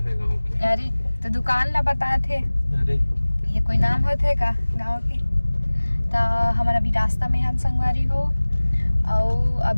है गांव के। अरे तो दुकान ला बताए थे, अरे ये कोई नाम होते का गांव के? तो हमारा अभी रास्ता में हन संगवारी हो और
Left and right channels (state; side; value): inverted; both; correlation -1.00